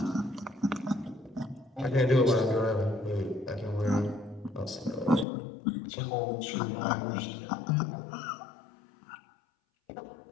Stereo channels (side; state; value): right; drops out; at 5.2 s